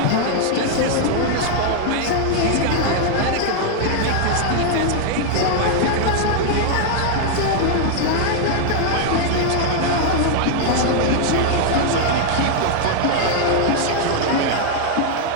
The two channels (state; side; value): different; both; correlation 0.00